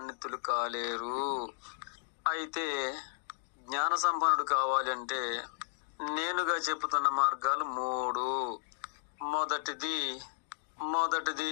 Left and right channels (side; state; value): right; silent; digital silence